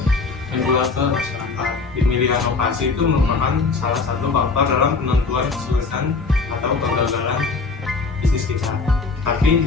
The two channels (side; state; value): right; quieter; 4.3 dB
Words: menjual ke masyarakat. Pemilihan lokasi itu merupakan salah satu faktor dalam penentuan kesuksesan atau kegagalan bisnis kita. Tapi